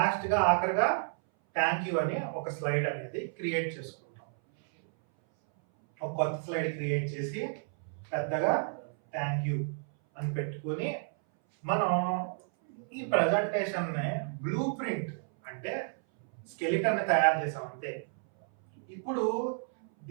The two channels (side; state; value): left; silent; 57 dB below the other